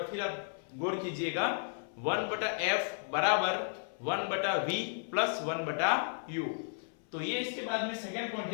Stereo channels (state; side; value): silent; right; 55 dB below the other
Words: फिर आप गौर कीजिएगा। 1/f बराबर 1/v प्लस 1/u। तो ये इसके बाद में सेकंड पॉइंट